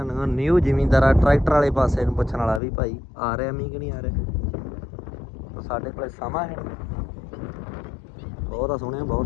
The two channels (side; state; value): right; drops out; at 2.6 s